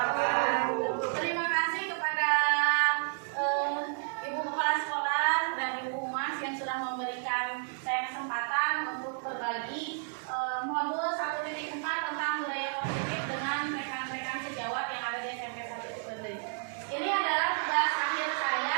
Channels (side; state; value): left; silent; 57 dB below the other